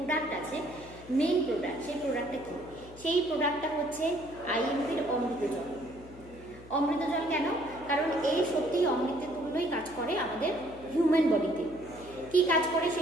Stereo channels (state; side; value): noise; left; hum, 19 dB below the sound